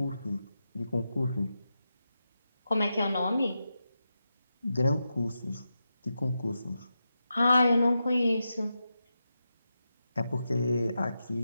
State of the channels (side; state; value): both; inverted; correlation -0.88